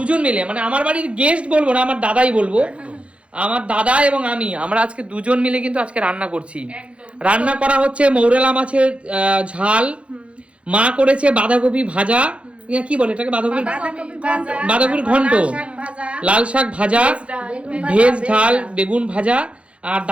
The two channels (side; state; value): left; late; 0.061 ms